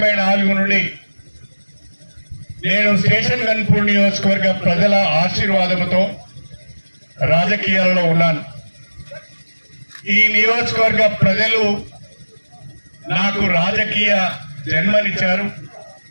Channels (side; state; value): both; inverted; correlation -1.00